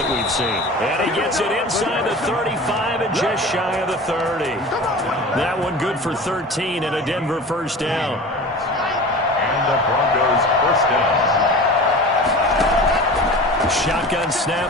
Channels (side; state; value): both; normal; correlation 0.36